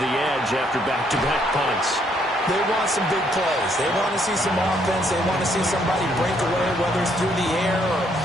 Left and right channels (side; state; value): both; normal; correlation 0.70